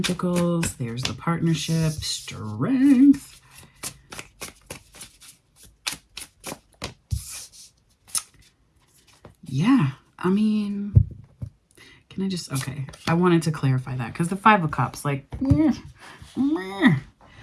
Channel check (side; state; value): both; identical; correlation 1.00